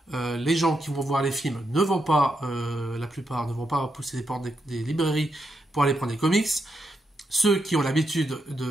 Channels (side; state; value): both; normal; correlation 0.82